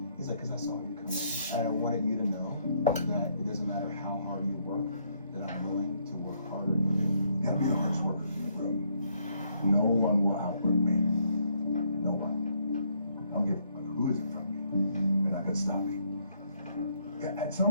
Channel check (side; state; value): both; inverted; correlation -0.71